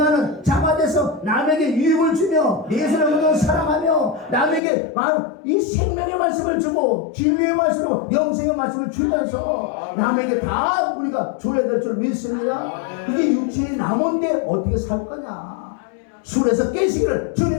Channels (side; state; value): right; drops out; at 4.6 s